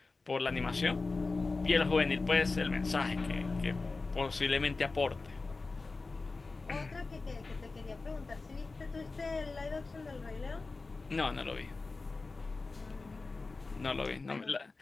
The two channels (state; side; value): quieter; right; 3.8 dB